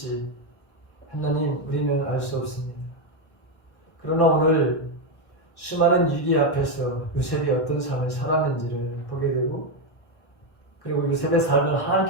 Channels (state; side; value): late; right; 1.1 ms